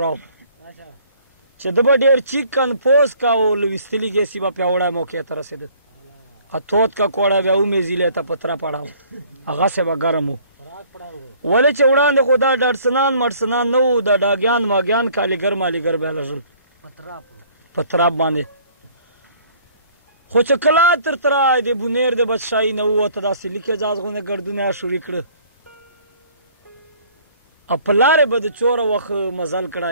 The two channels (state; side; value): inverted; both; correlation -0.56